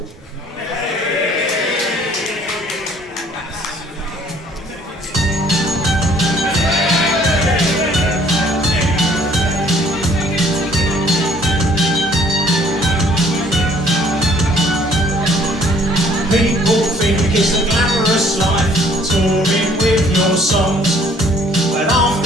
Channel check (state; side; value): normal; both; correlation 0.58